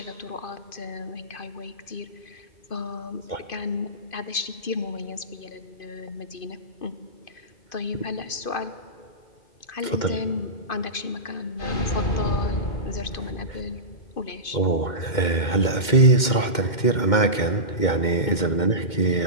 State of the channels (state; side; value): late; right; 2.1 ms